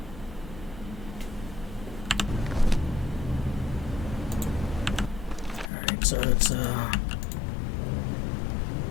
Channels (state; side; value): drops out; right; at 5.7 s